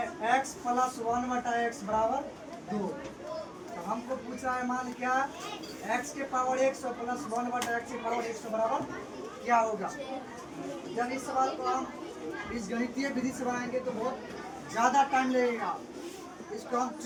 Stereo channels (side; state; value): both; identical; correlation 1.00